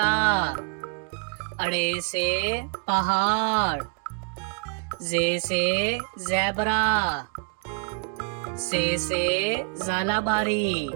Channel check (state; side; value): quieter; left; 36.1 dB